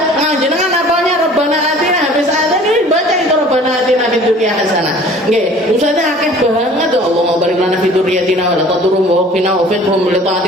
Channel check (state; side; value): normal; both; correlation 0.48